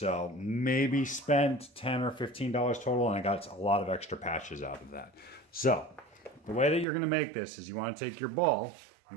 maybe spent $10 or $15 total, and I got a lot of extra patches out of that. So the way that you're going to make this is you want to take your ball,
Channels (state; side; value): drops out; left; at 6.9 s